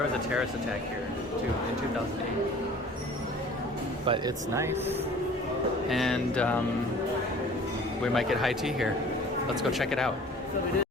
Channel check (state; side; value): normal; both; correlation 0.47